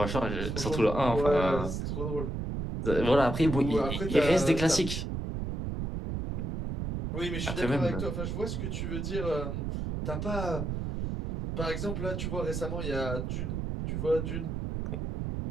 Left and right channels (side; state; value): right; noise; rumble, 3 dB below the sound